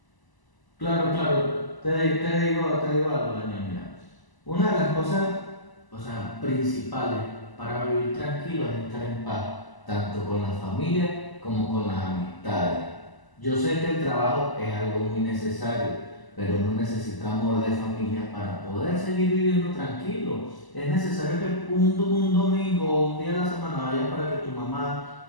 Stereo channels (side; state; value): right; late; 1.0 ms